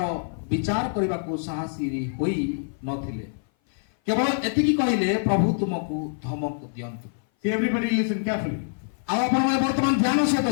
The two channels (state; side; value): silent; right; 58 dB below the other